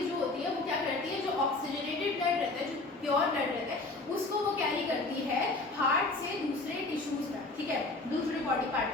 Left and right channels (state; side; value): quieter; right; 3.2 dB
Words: जो होती है वो क्या करती है, जो ऑक्सीजनेटेड ब्लड रहता है, जो प्योर ब्लड रहता है, उसको वो कैरी करती है हार्ट से दूसरे टिश्यूज तक, ठीक है, दूसरे बॉडी पार्ट